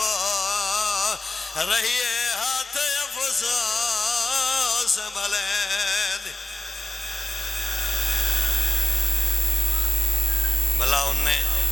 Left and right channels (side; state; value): both; normal; correlation 0.96